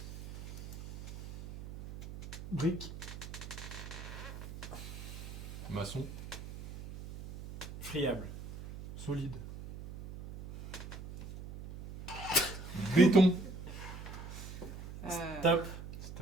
Brique. maçon, Friable. Solide. béton. Stop.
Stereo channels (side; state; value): right; noise; hum, 11 dB below the sound